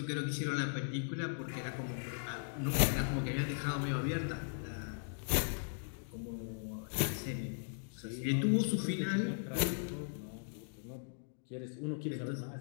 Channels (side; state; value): right; silent; digital silence